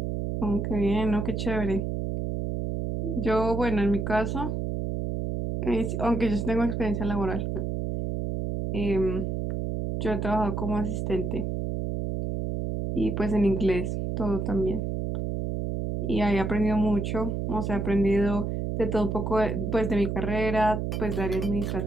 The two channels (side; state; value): right; noise; hum, 2 dB below the sound